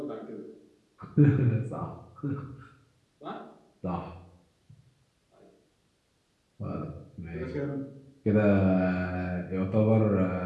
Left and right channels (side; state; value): both; identical; correlation 1.00